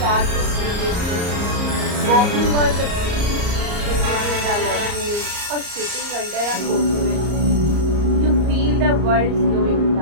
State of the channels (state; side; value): late; left; 34 ms